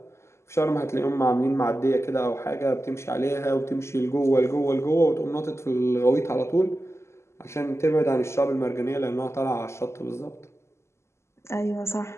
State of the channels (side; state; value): right; late; 0.13 ms